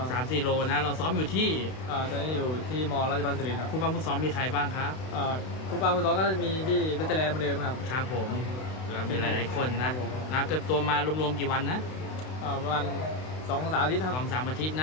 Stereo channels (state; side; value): late; right; 32 ms